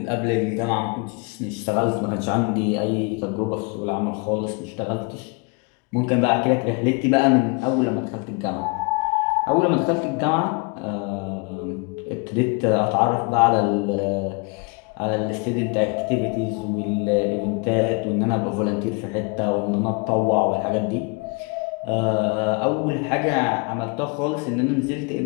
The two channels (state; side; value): quieter; right; 30.9 dB